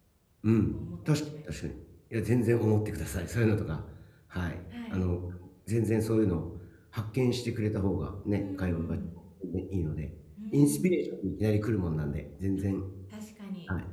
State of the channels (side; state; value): both; identical; correlation 1.00